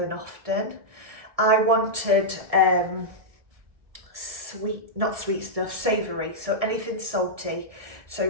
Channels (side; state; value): left; late; 1.7 ms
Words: often. I wanted not sweet stuff, savoury, so anything salty. So